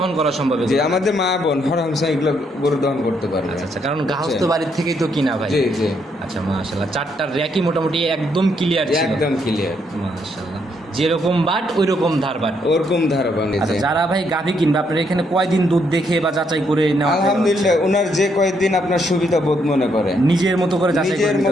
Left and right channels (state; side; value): normal; both; correlation 0.74